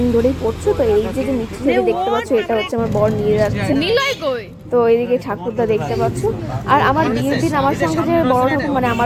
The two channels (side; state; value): both; identical; correlation 1.00